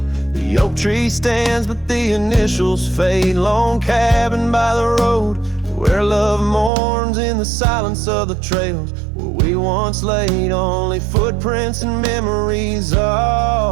The oak tree stands, but the initials fade. Lone cabin by the road, where love mourns in the silence of the trails where we once laid. Only footprints and memories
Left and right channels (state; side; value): drops out; left; at 6.7 s